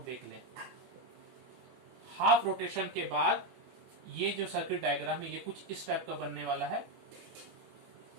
देख लें। हाफ रोटेशन के बाद ये जो सर्किट डायग्राम है ये कुछ इस टाइप का बनने वाला है।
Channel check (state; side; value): late; left; 24 ms